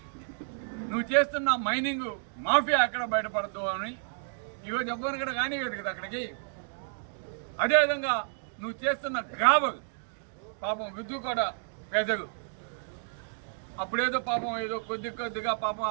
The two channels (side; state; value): left; silent; digital silence